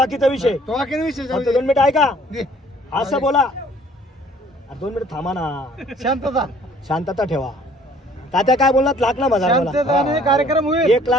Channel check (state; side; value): normal; both; correlation 0.56